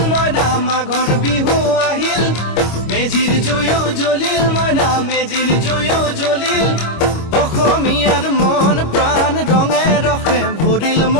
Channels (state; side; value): late; right; 25 ms